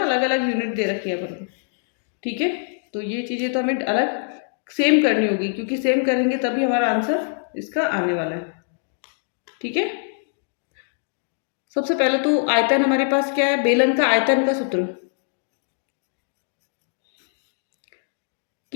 अलग अलग यूनिट दे रखी है अपन को। ठीक है। तो ये चीज़ें तो हमें अलग सेम करनी होगी, क्योंकि सेम करेंगे तभी हमारा आंसर इसका आने वाला है। ठीक है। सबसे पहले तो आयतन हमारे पास क्या है, बेलन का आयतन का सूत्र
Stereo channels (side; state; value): right; silent; digital silence